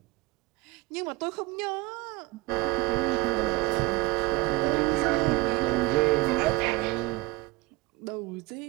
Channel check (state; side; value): quieter; left; 23.2 dB